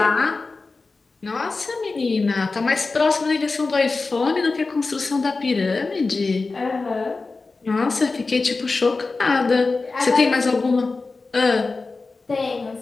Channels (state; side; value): quieter; right; 3.8 dB